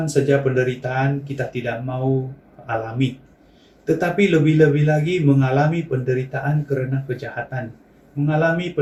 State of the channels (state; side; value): identical; both; correlation 1.00